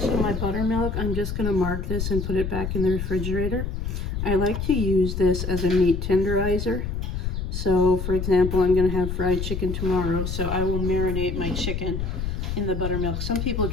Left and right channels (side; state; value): left; noise; rumble, 3 dB below the sound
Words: my buttermilk, I'm just going to mark this and put it back in the refrigerator. I like to use this as a meat tenderizer. So for example, I'm going to have fried chicken tomorrow, so I will marinate my chicken in the buttermilk. Some people